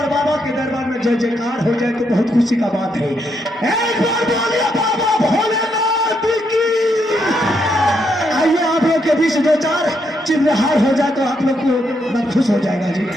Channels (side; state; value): both; normal; correlation 0.78